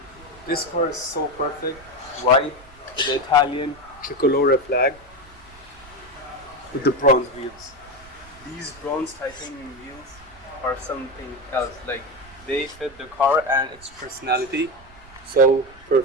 This car is so perfect. White with the Italian tricolore flag with the bronze wheels. These bronze titanium wheels are something else. Like, they fit the car and its personality so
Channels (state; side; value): noise; right; rumble, 23 dB below the sound